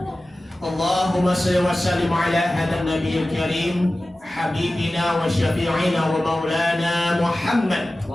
Allahumma shalli wa sallim ala hadan nabiyil karim habibina wa syafi'ina wa maulana Muhammad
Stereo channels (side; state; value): both; normal; correlation 0.96